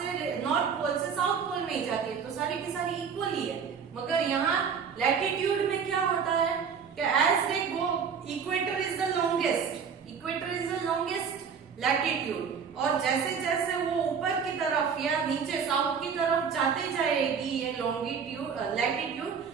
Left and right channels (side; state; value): left; quieter; 6.6 dB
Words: पोल से साउथ पोल में ही जाती है, तो सारी की सारी इक्वल ही है। मगर यहाँ लैटिट्यूड में क्या होता है कि as they go, equator is the longest, latitude, और जैसे जैसे वो ऊपर की तरफ या नीचे साउथ की तरफ जाते जाएगी ये लॉन्गिट्यूड लैटिट्यूड